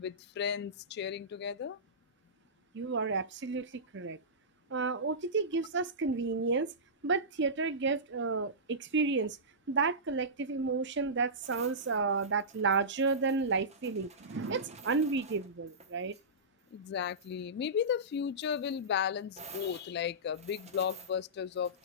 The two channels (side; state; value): both; normal; correlation -0.19